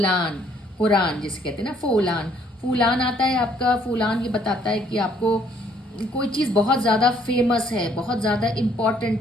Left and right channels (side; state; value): both; normal; correlation 0.64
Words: कुरान जिसे कहते हैं ना, फूलान। फूलान आता है आपका, फूलान ये बताता है कि आपको कोई चीज़ बहुत ज़्यादा फेमस है, बहुत ज़्यादा